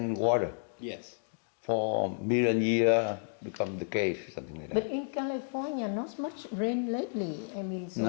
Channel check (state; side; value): silent; right; digital silence